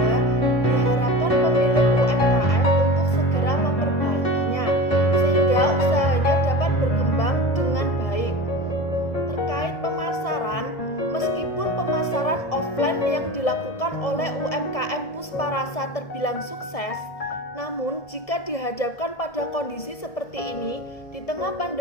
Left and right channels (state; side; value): late; right; 1.7 ms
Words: diharapkan pemilik UMKM untuk segera memperbaikinya, sehingga usahanya dapat berkembang dengan baik. Terkait pemasaran, meskipun pemasaran offline yang dilakukan oleh UMKM Pusparasa terbilang sukses, namun jika dihadapkan pada kondisi seperti ini di tengah